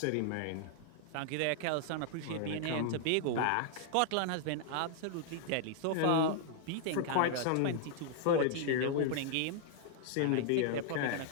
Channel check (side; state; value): both; different; correlation -0.01